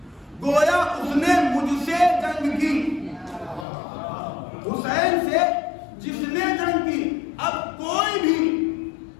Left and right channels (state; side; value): drops out; right; at 3.7 s